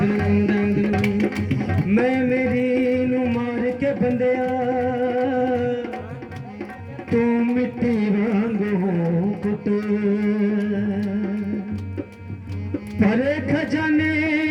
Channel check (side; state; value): both; identical; correlation 1.00